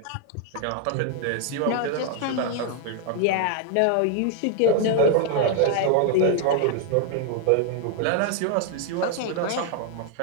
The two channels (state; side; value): different; both; correlation 0.00